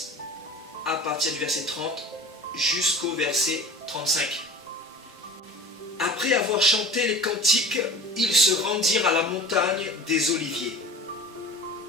à partir du verset 30 jusqu'au verset 35. Après avoir chanté les cantiques, ils se rendirent à la montagne des Oliviers.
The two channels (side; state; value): both; normal; correlation 0.38